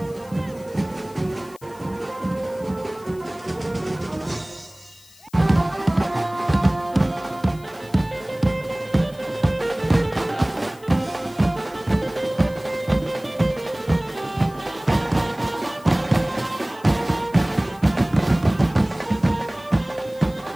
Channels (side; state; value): left; noise; hiss, 25 dB below the sound